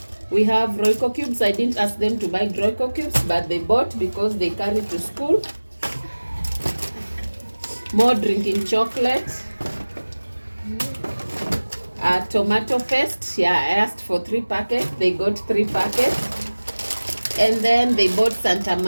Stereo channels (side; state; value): both; inverted; correlation -1.00